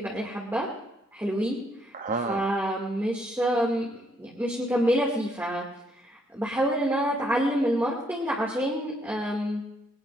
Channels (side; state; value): both; normal; correlation 0.71